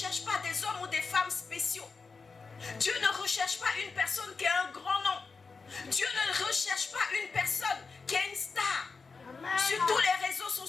pas des hommes ou des femmes spéciaux. Dieu ne recherche pas une personne qui a un grand nom. Dieu ne recherche pas une personne qui est une star. Amen. Sur tous les réseaux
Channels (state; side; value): quieter; right; 4.6 dB